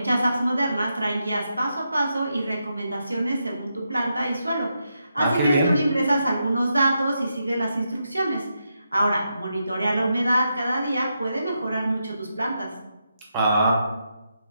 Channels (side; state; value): both; inverted; correlation -0.84